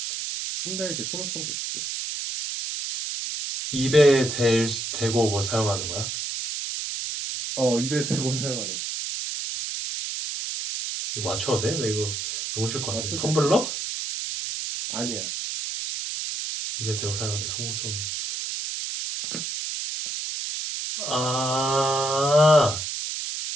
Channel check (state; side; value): noise; right; hiss, 4 dB below the sound